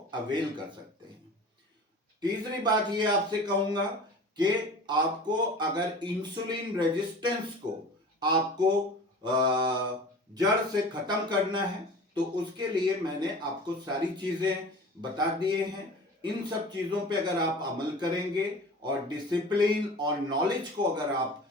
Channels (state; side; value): normal; both; correlation 0.38